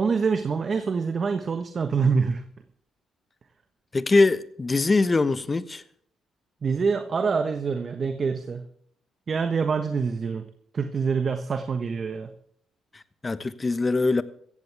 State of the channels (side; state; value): both; normal; correlation 0.88